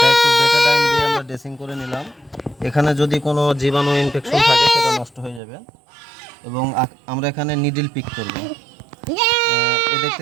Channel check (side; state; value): left; drops out; at 5.4 s